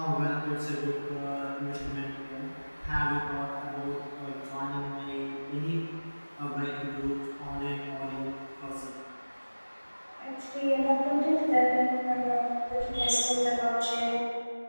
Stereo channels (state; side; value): inverted; both; correlation -1.00